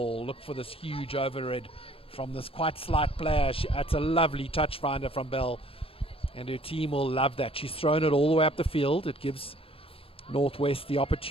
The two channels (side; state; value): right; late; 0.27 ms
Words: Look for this huge overhead from this quite slight player. It's a lovely touch finder from Bell, and her team will love that. She's thrown it all the way up the field. It gives Northwest the